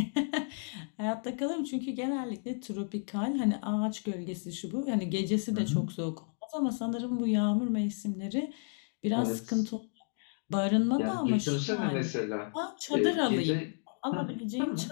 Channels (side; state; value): right; silent; 56 dB below the other